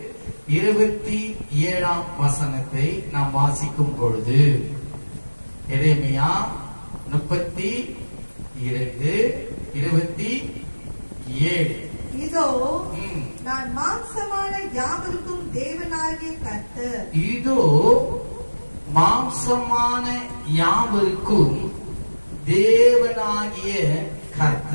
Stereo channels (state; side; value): inverted; both; correlation -1.00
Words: வசனத்தை நாம் வாசிக்கும் பொழுது, எரேமியா 32:27. இதோ நான் மாம்சமான யாவருக்கும் தேவனாகிய கர்த்தர். இதோ மாம்சமான யாவருக்கும் தேவனாகிய